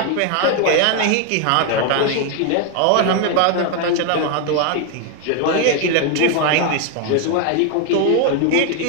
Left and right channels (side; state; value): both; different; correlation 0.01